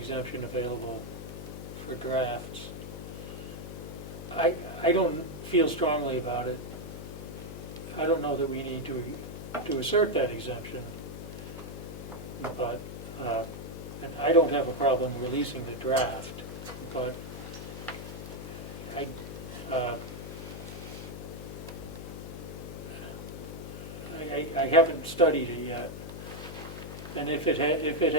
available for drafts. I don't feel strongly about it. I don't know that we need to assert that exemption, but, and I don't have a problem releasing the draft, but I haven't studied it yet, and if it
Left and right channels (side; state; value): left; noise; hum, 9 dB below the sound